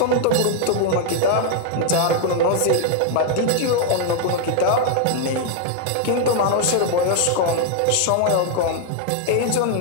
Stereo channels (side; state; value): both; different; correlation 0.00